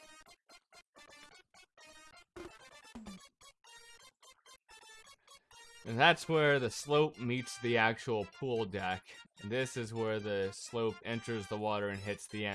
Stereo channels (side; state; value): both; identical; correlation 1.00